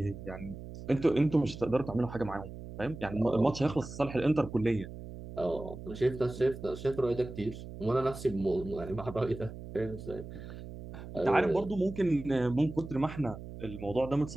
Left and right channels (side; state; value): right; noise; hum, 12 dB below the sound